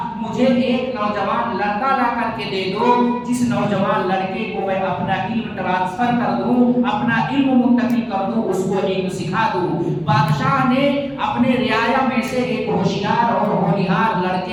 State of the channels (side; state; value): both; identical; correlation 1.00